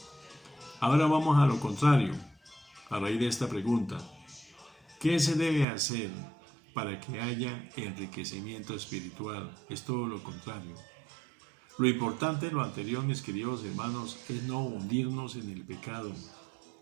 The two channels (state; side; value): drops out; left; at 5.7 s